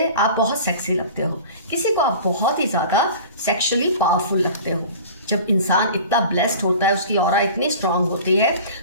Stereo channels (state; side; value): inverted; both; correlation -0.40